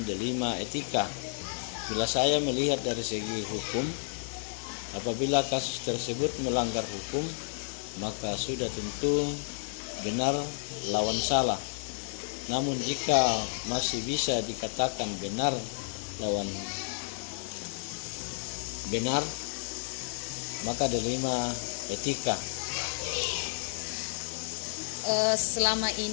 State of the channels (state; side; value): silent; right; 57 dB below the other